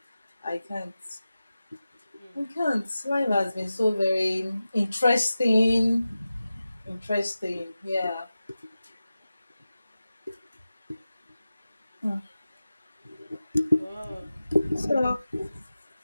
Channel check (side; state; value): both; inverted; correlation -0.95